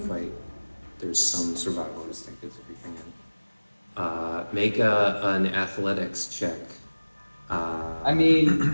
There's some survival instinct that's creeping in. Make an athletics check. I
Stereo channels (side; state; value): both; inverted; correlation -1.00